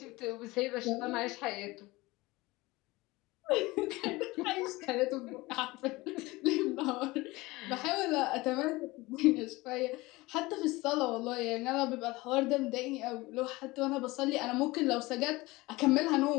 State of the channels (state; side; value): quieter; right; 21.1 dB